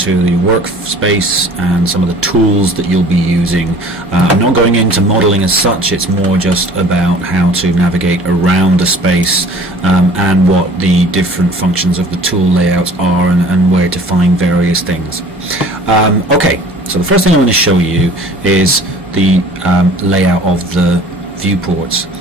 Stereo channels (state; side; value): normal; both; correlation 0.48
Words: the workspace and some of the tools that you'll be using. I'm not going into modeling as such, it's more just about how to navigate around the space and what the different functions of the tool layouts are and where to find various things. Okay, so the first thing I'm going to show you is the layout of the viewports.